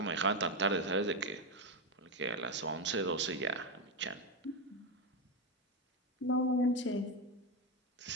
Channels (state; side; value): normal; both; correlation 0.09